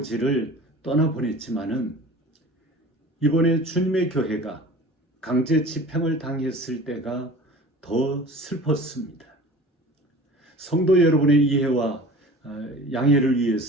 떠나보냈지만은 이번에 주님의 교회가 강제 집행을 당했을 때가 더 슬펐습니다. 성도 여러분의 이해와 양해를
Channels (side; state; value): both; normal; correlation 0.41